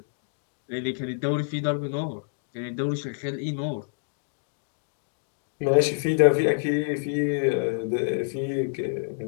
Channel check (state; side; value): silent; right; digital silence